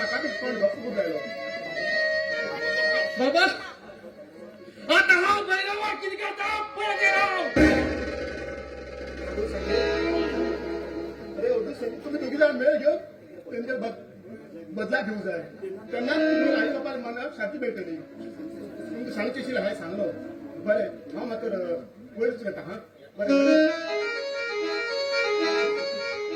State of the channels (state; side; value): identical; both; correlation 1.00